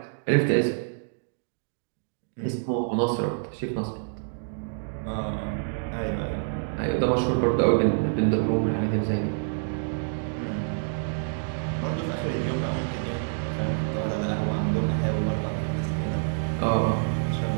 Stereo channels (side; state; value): left; silent; digital silence